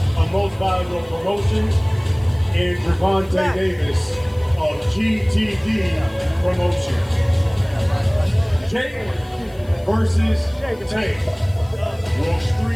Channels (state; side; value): noise; left; hiss, 28 dB below the sound